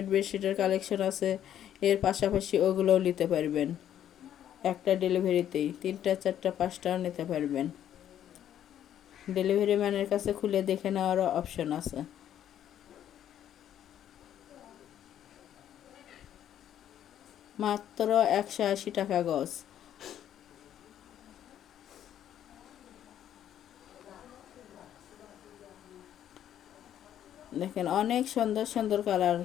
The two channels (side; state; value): right; quieter; 10.6 dB